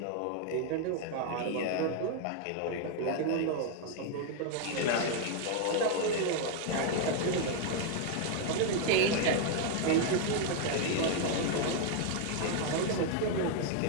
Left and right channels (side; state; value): both; different; correlation 0.00